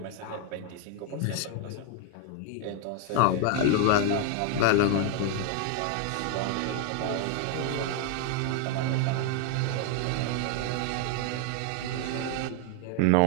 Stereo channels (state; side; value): different; both; correlation 0.00